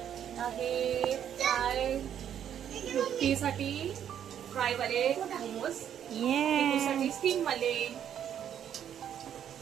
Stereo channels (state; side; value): quieter; left; 9.5 dB